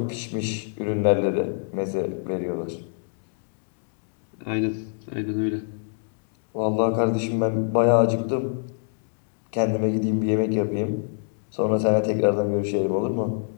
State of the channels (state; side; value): silent; right; digital silence